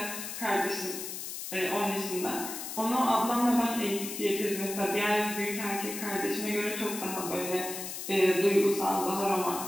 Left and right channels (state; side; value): noise; left; hiss, 7 dB below the sound